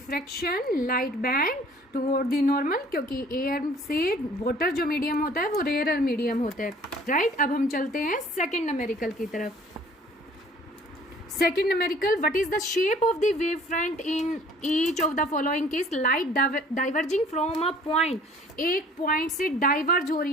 light band toward the normal, क्योंकि एयर से वाटर जो मीडियम होता है वो रेयरर मीडियम होता है। राइट, अब हम चलते हैं सेकेंड न्यूमेरिकल की तरफ। Second numerical, what is the shape of the wavefront in each of the following case? Light diverging from a point, एक पॉइंट से डाइवर्ज हो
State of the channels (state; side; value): normal; both; correlation 0.53